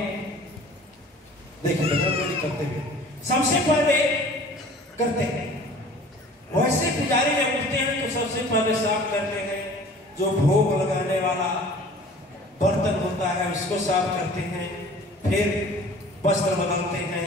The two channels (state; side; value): normal; both; correlation 0.47